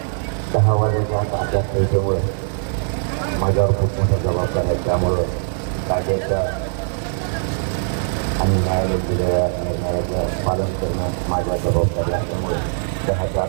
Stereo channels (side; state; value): left; silent; 65 dB below the other